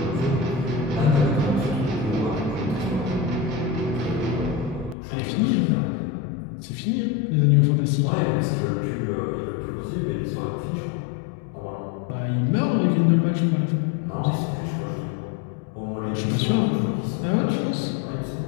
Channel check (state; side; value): drops out; right; at 5.0 s